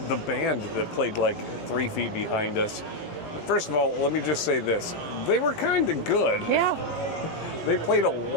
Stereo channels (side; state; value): right; late; 18 ms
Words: band that played like 3 feet behind us, first of all, let me just say this. They were kind of good. Yeah. They played a